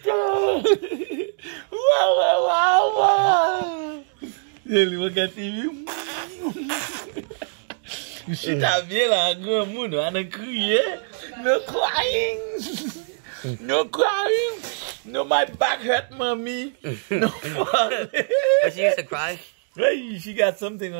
Wawa! Jelly, regarde-tu? Cheetah bien là, grand monde, on a crié. No crying! No crying! No, my back hurt, mommy. No fun. But she used to cry. Hey, she got something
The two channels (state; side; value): silent; left; digital silence